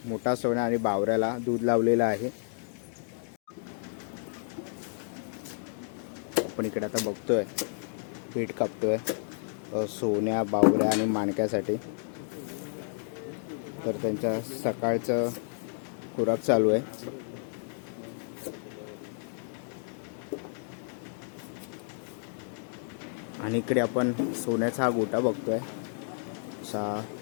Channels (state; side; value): silent; right; digital silence